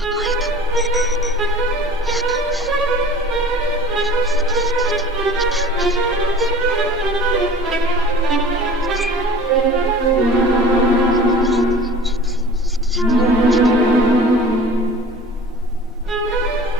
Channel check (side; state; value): both; normal; correlation 0.44